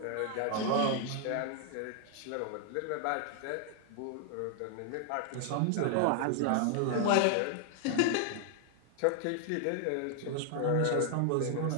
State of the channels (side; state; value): both; different; correlation 0.00